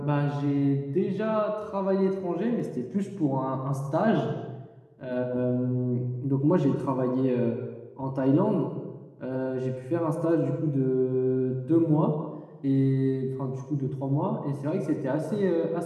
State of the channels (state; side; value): identical; both; correlation 1.00